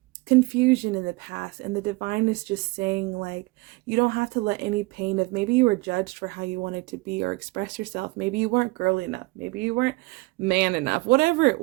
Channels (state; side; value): quieter; left; 23.4 dB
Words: confusion in the past, and the divine is just saying, like, you don't have to let any pain of maybe you were judged for how you wanted to be or express yourself. Maybe you weren't girly enough. Maybe you weren't man enough. Whatever it